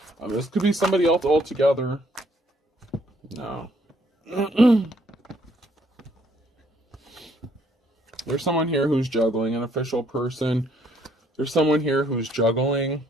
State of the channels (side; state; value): both; normal; correlation 0.66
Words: This could be somebody else altogether. No. There's someone here who's juggling, an official person. There's someone here who's juggling